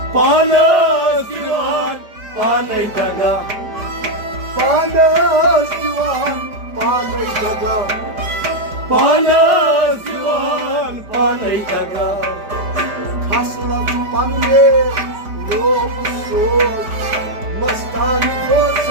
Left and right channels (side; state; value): left; late; 5.0 ms